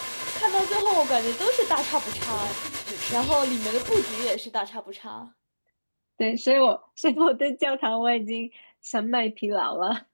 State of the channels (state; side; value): inverted; both; correlation -1.00